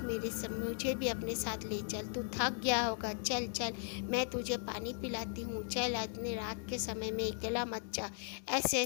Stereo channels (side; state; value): right; silent; 53 dB below the other